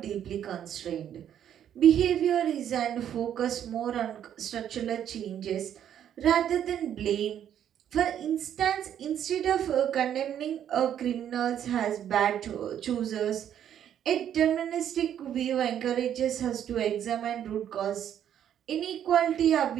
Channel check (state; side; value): quieter; left; 9.9 dB